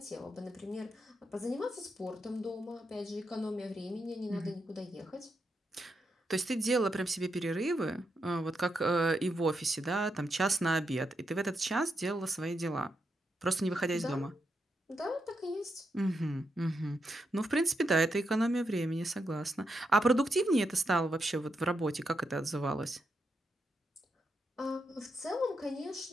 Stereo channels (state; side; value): normal; both; correlation 0.83